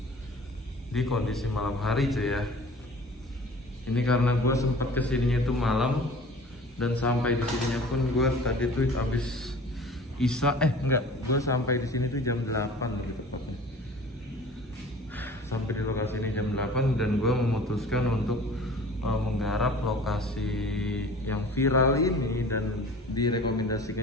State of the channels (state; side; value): normal; both; correlation 0.44